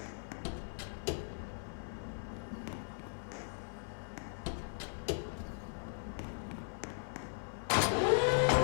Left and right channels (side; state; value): right; silent; 52 dB below the other